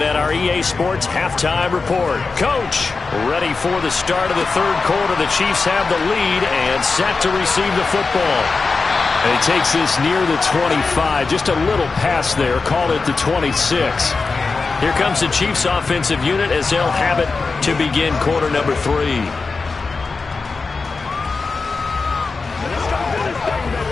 at our EA Sports Halftime Report. Coach, ready for the start of the third quarter. The Chiefs have the lead and set to receive the football. And he takes this near the 25, just a little pass there, called it the 26. Here comes the Chiefs offensive unit as they'll have it to begin quarter number 3.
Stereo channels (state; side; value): quieter; right; 4.3 dB